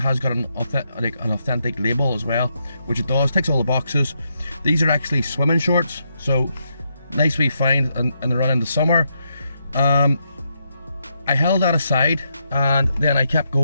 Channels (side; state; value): both; inverted; correlation -0.80